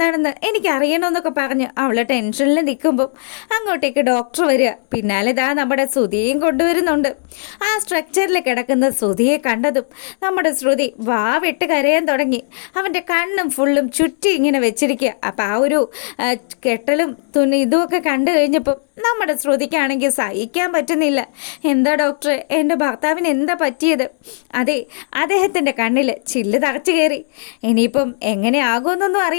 എനിക്കറിയണമെന്നൊക്കെ പറഞ്ഞ് അവളെ ടെൻഷനിൽ നിൽക്കുമ്പം അങ്ങോട്ടേക്ക് ഡോക്ടർ വരിക. പിന്നാലെ നമ്മുടെ ശ്രുതിയെയും കൊണ്ടുവരുന്നുണ്ട്. ആ സ്ട്രക്ചറിൽ കിടക്കുന്ന ശ്രുതിയെ കണ്ടതും നമ്മുടെ ശ്രുതി വിട്ട് കരയാൻ തുടങ്ങി. അവൻ്റെ കണ്ണും ഫുള്ളും ചുറ്റി ഇങ്ങനെ വെച്ചിരിക്കുക. അപ്പം ആ ഒരു കെട്ടലും ഇതുമൊക്കെ കണ്ടു കഴിഞ്ഞപ്പം നമ്മുടെ ശ്രുതിക്കാണെങ്കിൽ സഹിക്കാൻ പറ്റുന്നില്ല. എന്താ ഡോക്ടറെ, എൻ്റെ ഭർത്താവിന് എന്താ പറ്റിയത്? അതെ, അദ്ദേഹത്തിൻ്റെ കണ്ണിൽ ചില്ല് തറച്ചു കയറി. ഇനിയിപ്പം എങ്ങനെയാകുമെന്നൊന്നും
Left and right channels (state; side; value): silent; right; 68 dB below the other